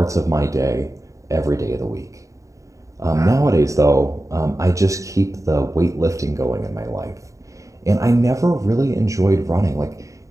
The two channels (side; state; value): left; late; 0.16 ms